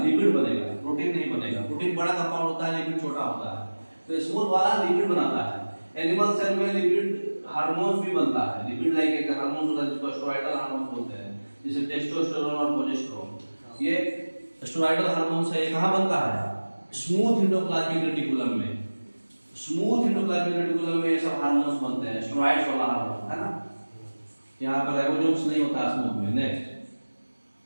बनेगा, प्रोटीन नहीं बनेगा। प्रोटीन बड़ा कंपाउंड होता है, लिपिड छोटा होता है। तो स्मूथ वाला लिपिड बनाता है, एनिमल सेल में लिपिड हार्मोन्स भी बनता है। लिपिड लाइक एक हार्मोन होता है जिसको स्टेरॉइडल हार्मोन बोलते हैं, जैसे टेस्टोस्टेरोन और प्रोजेस्टेरोन। ये स्टेरॉइडल हार्मोन से कहाँ बनता है? स्मूथ एंडोप्लाज्मिक रेटिकुलम में। स्मूथ एंडोप्लाज्मिक रेटिकुलम में ये सब हार्मोन्स बनते हैं, स्टेरॉइड्स वाला हार्मोन, है ना। यहाँ पर राइबोसोम्स नहीं होता स्मूथ में। नेक्स्ट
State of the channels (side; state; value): both; inverted; correlation -1.00